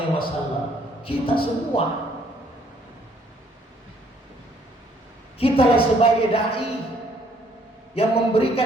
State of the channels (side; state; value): both; normal; correlation 0.64